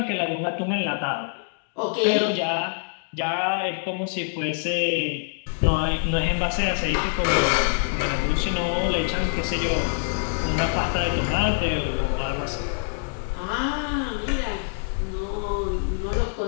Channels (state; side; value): silent; right; digital silence